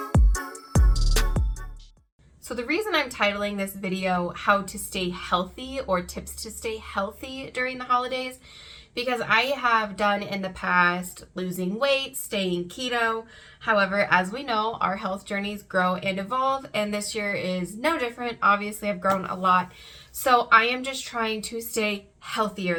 So the reason I'm titling this video How to Stay Healthy or Tips to Stay Healthy During the Holidays, because I have done in the past losing weight, staying keto. However, as we know, our health journeys grow and evolve, and this year is no different. Obviously, I've grown a lot. So I am just trying to stay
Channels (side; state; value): both; identical; correlation 1.00